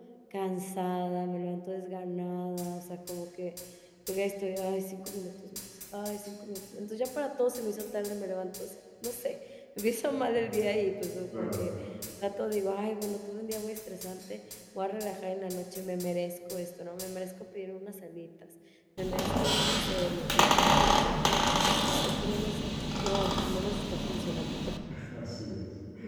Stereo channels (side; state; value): both; identical; correlation 1.00